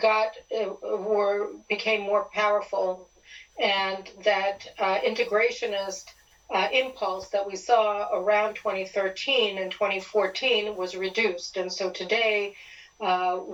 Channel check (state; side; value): identical; both; correlation 1.00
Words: became more powerful, and that integrationist impulse that we saw around 2013 and 2014 was reduced. And so today